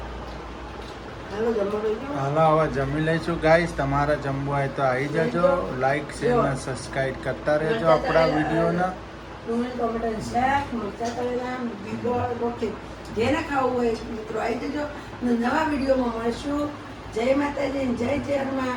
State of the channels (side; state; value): both; identical; correlation 1.00